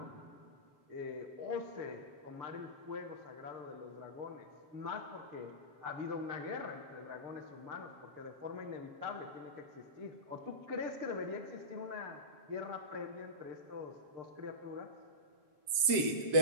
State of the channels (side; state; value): left; late; 7.5 ms